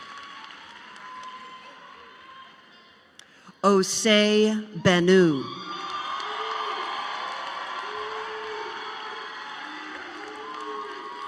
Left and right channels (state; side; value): identical; both; correlation 1.00